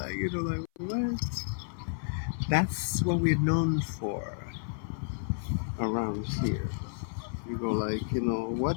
you know, what? That's what we're known for around here. You go you know,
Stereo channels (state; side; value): silent; right; 57 dB below the other